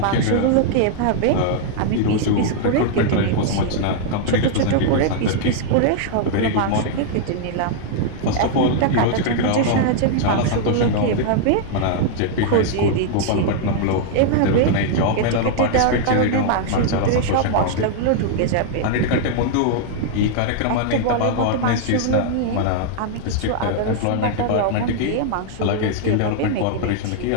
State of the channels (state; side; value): different; both; correlation -0.01